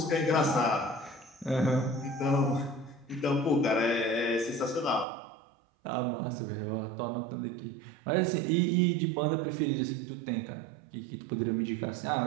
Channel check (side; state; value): left; drops out; at 5.1 s